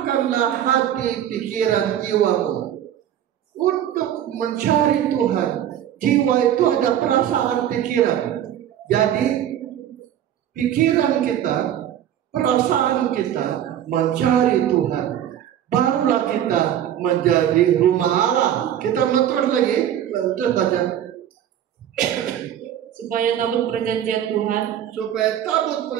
hati, pikiran, jiwamu untuk mencari Tuhan. Jiwa itu ada perasaan, pikiran. Jadi pikiran kita, perasaan kita mencari Tuhan, barulah kita menjadi rumah Allah. Kita terus lagi, terus baca. Supaya tabut perjanjian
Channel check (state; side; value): quieter; left; 10.7 dB